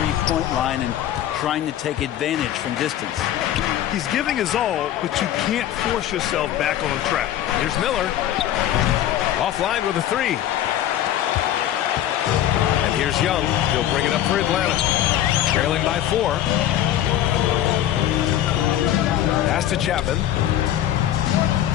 line and trying to take advantage from distance. He's giving his all, but you can't force yourself back on track. Here's Miller. Offline with a 3. And here's Young. He'll bring it up for Atlanta. Trailing by 4. Pass to Chapman.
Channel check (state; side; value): quieter; right; 12.0 dB